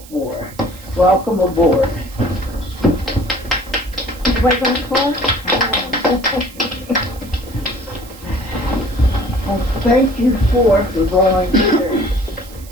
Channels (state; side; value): noise; right; hiss, 20 dB below the sound